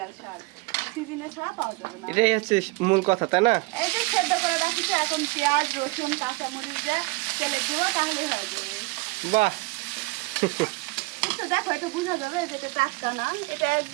শাক, সিজনে ছাড়া পাওয়া যাবে না। এটাই হচ্ছে মূল কথা, তাই না? এই যে সেদ্ধ করে রাখিছে, এখন পেঁয়াজ রসুন কাঁচামরিচ দিয়ে তেলে দিব, তাহলেই হয়ে যাবে। বাহ একটু দেখো, এটা বোঝা যাবে যে এটা টাটকা না, এটা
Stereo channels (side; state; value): left; quieter; 24.7 dB